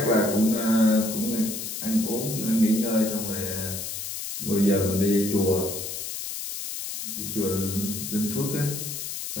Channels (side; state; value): left; noise; hiss, 6 dB below the sound